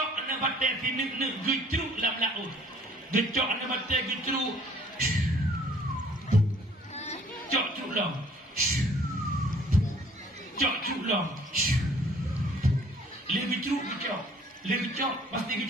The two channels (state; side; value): normal; both; correlation 0.56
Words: anak bate tini gecruk lam laut gecok anda baca gecru cok culong cok culong le gecru gecok le gecok pasti